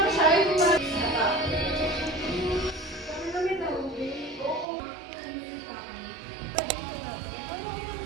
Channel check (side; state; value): left; drops out; at 4.7 s